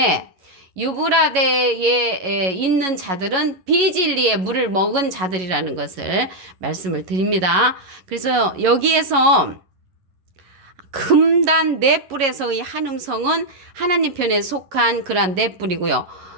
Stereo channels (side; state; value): left; late; 11 ms